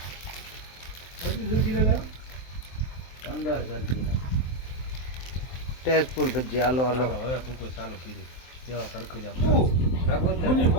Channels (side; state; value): right; late; 23 ms